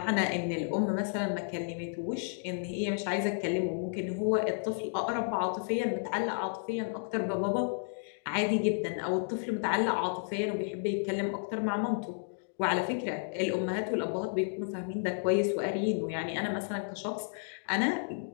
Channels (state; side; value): silent; right; digital silence